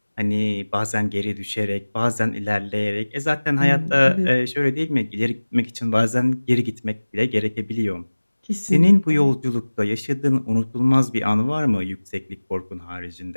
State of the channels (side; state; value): both; inverted; correlation -1.00